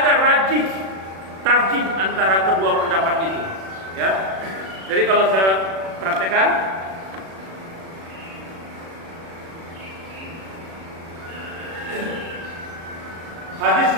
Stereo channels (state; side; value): late; left; 36 ms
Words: tarjih antara kedua pendapat itu. Ya. Jadi kalau saya praktekkan, hadis